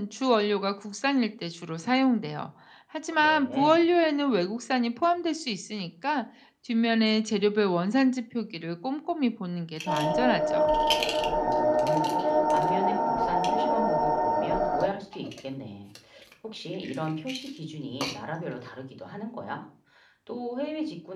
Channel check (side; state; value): both; identical; correlation 1.00